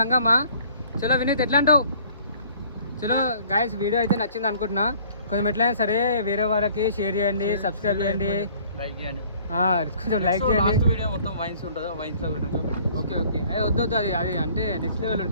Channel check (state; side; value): inverted; both; correlation -0.54